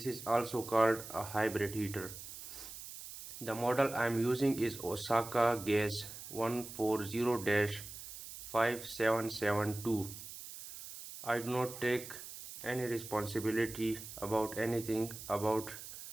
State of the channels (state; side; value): noise; right; hiss, 12 dB below the sound